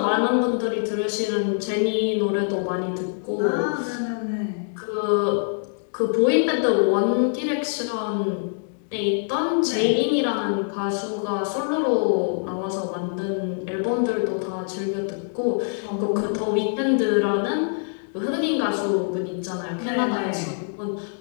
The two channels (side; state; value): right; silent; digital silence